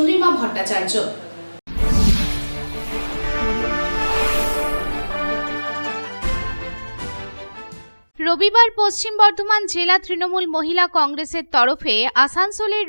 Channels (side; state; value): both; inverted; correlation -1.00